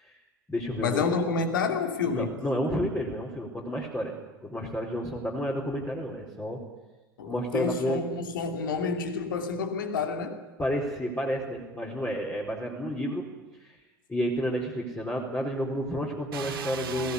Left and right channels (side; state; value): both; normal; correlation 0.44